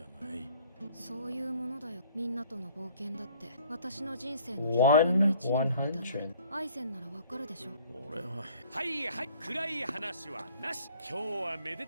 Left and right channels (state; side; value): inverted; both; correlation -0.57